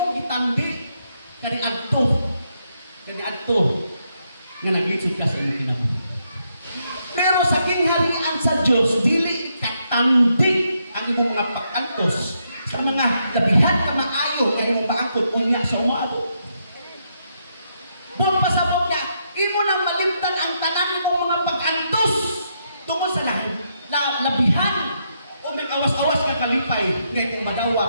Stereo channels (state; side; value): inverted; both; correlation -0.78